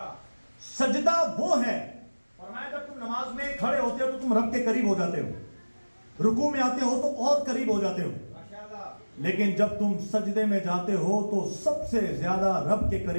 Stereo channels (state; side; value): inverted; both; correlation -1.00